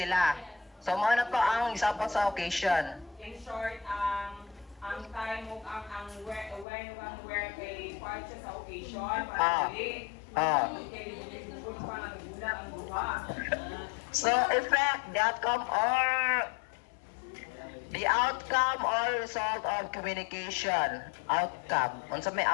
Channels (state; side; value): drops out; right; at 6.7 s